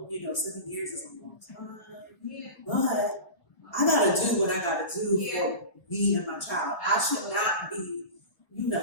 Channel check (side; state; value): right; late; 1.6 ms